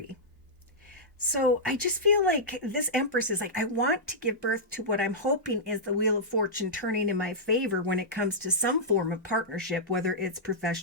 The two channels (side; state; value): both; normal; correlation -0.12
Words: So I just feel like this Empress is like, I want to give birth to what I'm hoping is the Wheel of Fortune turning in my favor when it comes to some form of partnership, whether it's